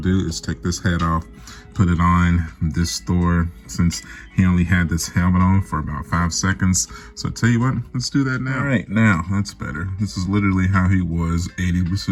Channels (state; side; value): identical; both; correlation 1.00